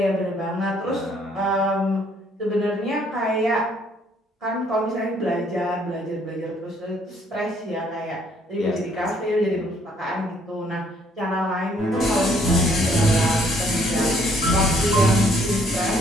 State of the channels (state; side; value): normal; both; correlation 0.64